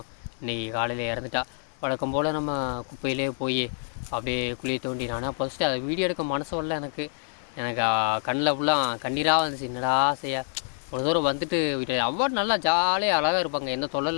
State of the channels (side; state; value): right; silent; 60 dB below the other